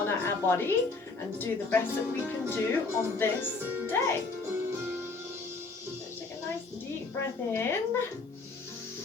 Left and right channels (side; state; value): right; quieter; 3.9 dB